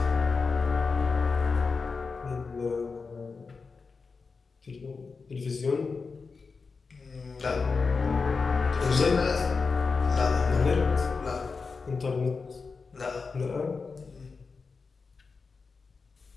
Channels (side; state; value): right; quieter; 4.7 dB